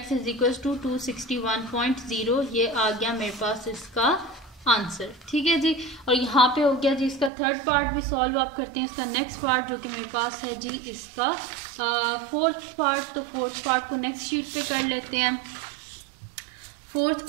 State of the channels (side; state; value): left; drops out; at 7.3 s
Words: is equal to 261.0। ये आ गया मेरे पास इसका आंसर। ठीक है जी, और यहाँ पे हो गया जी इसका थर्ड पार्ट भी सॉल्व आप करते हैं। इसका नेक्स्ट पार्ट जो कि मेरे पास है जी इसका फोर्थ पार्ट, तो फोर्थ पार्ट को नेक्स्ट शीट पे कर लेते हैं। फोर्थ